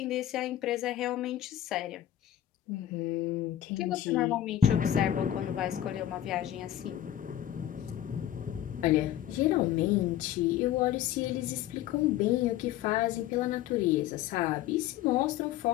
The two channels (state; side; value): quieter; right; 12.3 dB